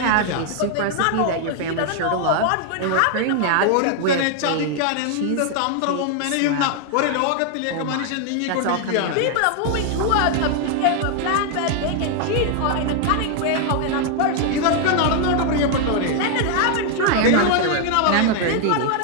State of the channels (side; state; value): both; different; correlation 0.00